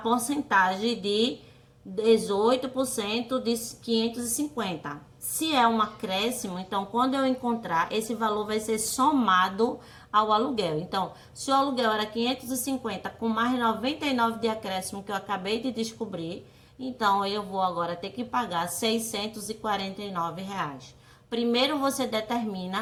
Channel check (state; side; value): identical; both; correlation 1.00